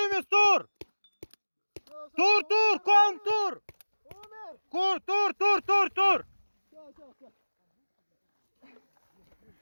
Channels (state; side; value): inverted; both; correlation -1.00